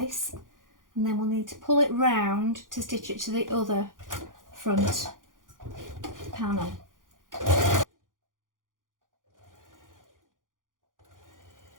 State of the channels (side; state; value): left; late; 0.89 ms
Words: and then we'll need to pull it round to stitch it to the other front panel.